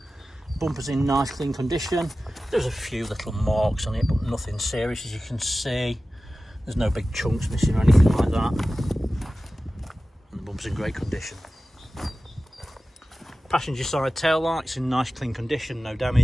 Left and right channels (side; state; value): both; normal; correlation 0.95